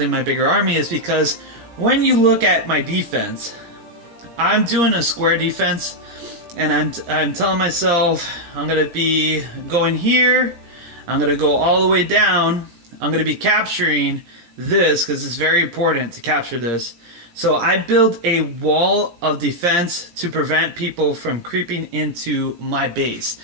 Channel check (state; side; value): late; left; 17 ms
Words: my bigger army is because when you look at my defense, I'm doing a square defense, and I'm telling myself I'm going to be going here. I'm going to go all the way down. I'm going to be capturing this because it's very important to capture this. So I build a wall of defense to prevent people from creeping into my base.